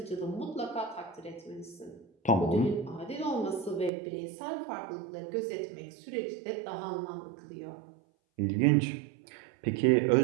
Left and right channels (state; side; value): drops out; left; at 3.9 s